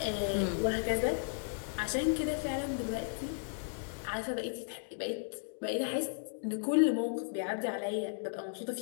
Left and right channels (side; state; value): right; silent; digital silence